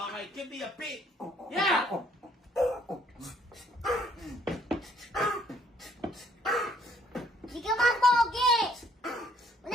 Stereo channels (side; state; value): both; normal; correlation 0.64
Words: Okay, give me a beat. Yeah! Di ka man pogi!